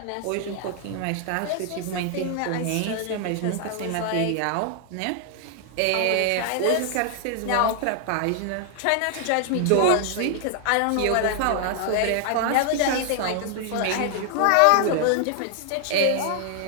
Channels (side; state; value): both; different; correlation 0.00